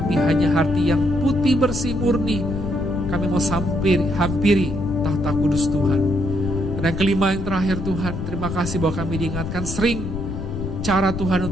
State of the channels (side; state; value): left; noise; rumble, 5 dB below the sound